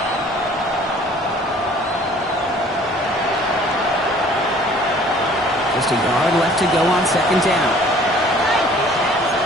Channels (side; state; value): both; normal; correlation 0.53